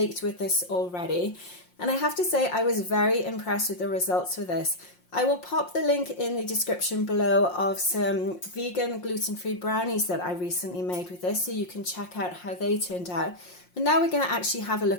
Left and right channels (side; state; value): right; late; 5.6 ms